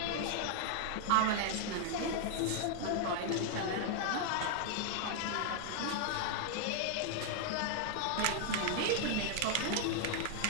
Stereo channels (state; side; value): different; both; correlation 0.00